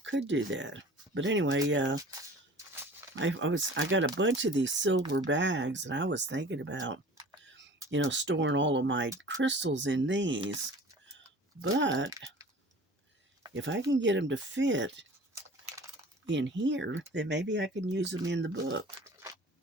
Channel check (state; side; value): normal; both; correlation 0.44